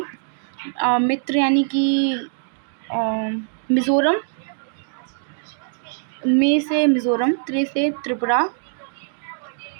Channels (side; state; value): left; silent; digital silence